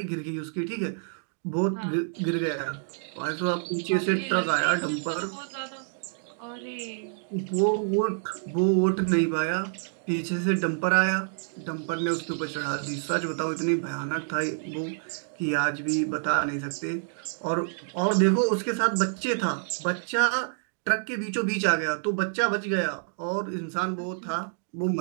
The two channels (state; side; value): silent; left; digital silence